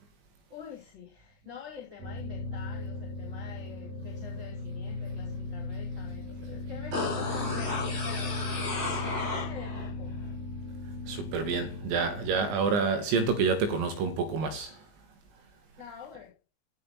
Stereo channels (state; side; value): late; left; 19 ms